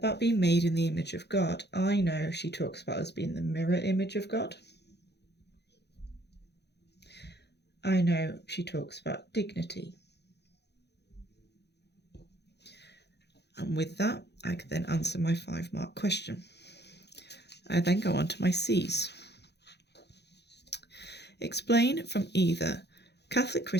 being made in the image of God, I know she talks about us being the mirror image of God. I know she talks about dignity. And with that, I can then answer my 5-mark question. I then go on to my C's. Explain from either Catholic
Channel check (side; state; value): right; late; 0.49 ms